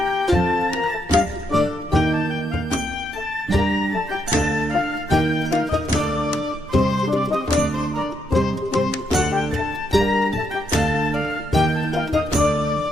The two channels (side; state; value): both; normal; correlation 0.78